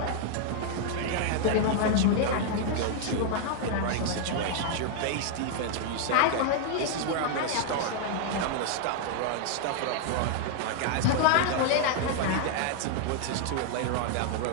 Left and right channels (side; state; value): both; different; correlation 0.00